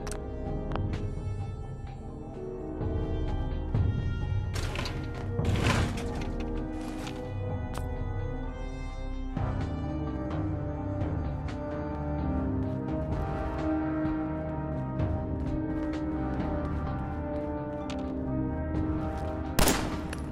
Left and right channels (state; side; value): identical; both; correlation 1.00